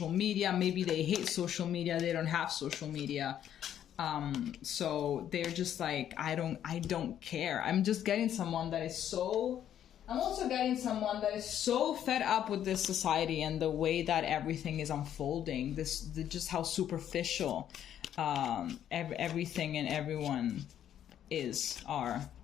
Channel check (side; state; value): right; quieter; 10.3 dB